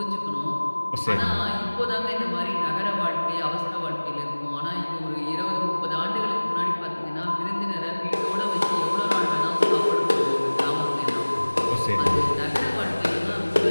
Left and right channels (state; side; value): inverted; both; correlation -1.00